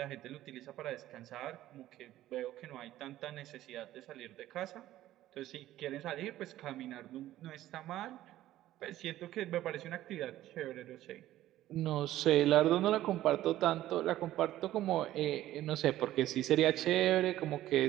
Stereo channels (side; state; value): left; quieter; 14.1 dB